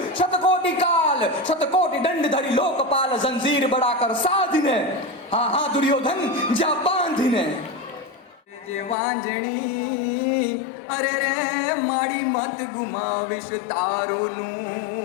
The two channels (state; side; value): drops out; right; at 9.0 s